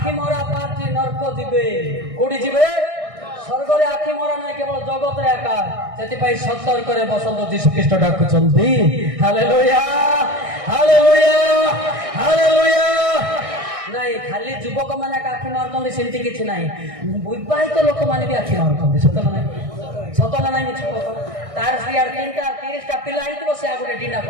ମରା ପାର୍ଟି ନର୍କ ଯିବେ। କୋଉଠି ଯିବେ? ସ୍ୱର୍ଗରେ ଆଖି ମରା ନାହିଁ, କେବଳ ଜଗତରେ ଏକା। ସେଥିପାଇଁ ସତର୍କରେ ବସନ୍ତୁ, ଯୀଶୁ ଖ୍ରୀଷ୍ଟ ଡାକୁଛନ୍ତି। ହାଲେଲୁୟା ହାଲେଲୁୟା ହାଲେଲୁୟା। ନାଇଁ ଖାଲି ଯୁବକ ମାନେ ଆଖି ମାରୁଛନ୍ତି ସେମିତି କିଛି ନାହିଁ। ବିବାହିତ ଲୋକମାନେ ବି ଆଖି ମାରୁଛନ୍ତି। ସତ ନା ନାହିଁ? ସତ ନା ନାହିଁ ମିଛ? ତାର ସିଆଡେ 30ଟା ପିଲା ହେଇଥିବ, ସେ ଆଉ ଗୋଟେ ଡିନାକୁ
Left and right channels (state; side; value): late; left; 1.6 ms